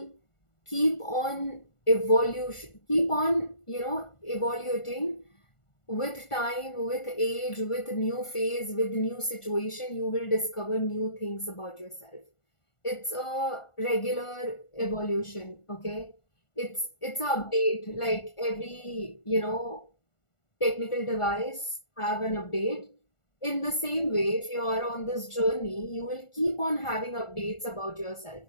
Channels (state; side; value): late; right; 1.4 ms